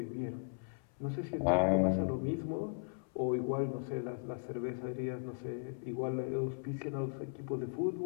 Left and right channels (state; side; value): silent; right; 53 dB below the other